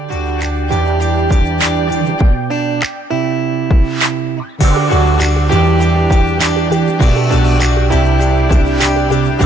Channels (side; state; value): both; normal; correlation 0.75